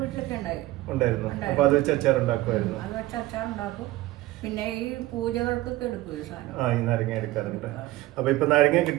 ഉണ്ടായിരുന്നു. അപ്പൊ അത് വെച്ച് അച്ചാർ ഉണ്ടാക്കുമായിരുന്നു. പിന്നെ ഈ പൂജകൾക്കൊക്കെ എടുക്കും ഈ നാരങ്ങ എടുക്കാറുണ്ട്. അപ്പൊ ഇപ്പൊ നാരങ്ങ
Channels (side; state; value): left; quieter; 17.4 dB